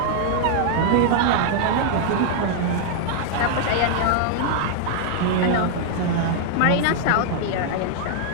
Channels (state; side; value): different; both; correlation 0.00